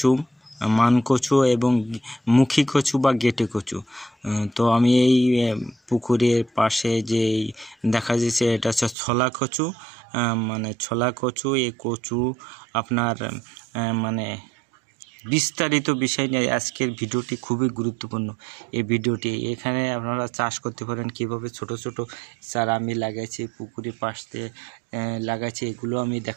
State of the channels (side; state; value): left; drops out; at 9.0 s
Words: মান কচু এবং মুখী কচু বা গেটে কচু। তো আমি এই পুকুরের পাশে যে দেখা যাচ্ছে এটা হচ্ছে ছলা কচু, ছলা কচু। এই কচু আপনার বিস্তারিত বিষয় নিয়ে আজকের ভিডিওটি খুবই গুরুত্বপূর্ণ। এই ভিডিওটি এখানে আপনারা চাষ করতে পারেন কিভাবে। ছোট ছোট চারা আমি লাগাইছি, পুকুরের পাশ দিয়ে লাগাইছি, এগুলো আমি